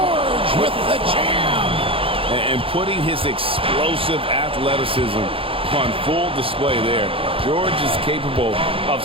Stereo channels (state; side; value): late; left; 0.27 ms